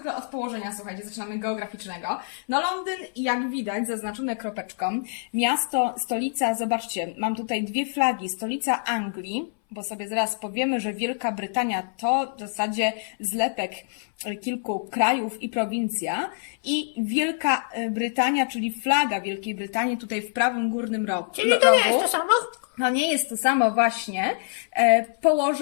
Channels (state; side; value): silent; right; 60 dB below the other